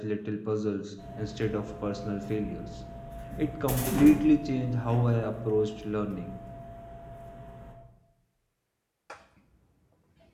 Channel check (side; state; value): both; identical; correlation 1.00